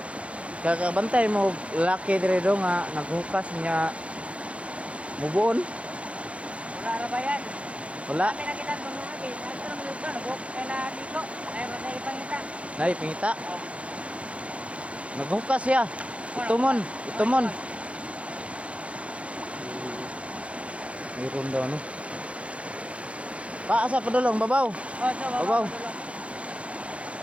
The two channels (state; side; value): late; left; 0.062 ms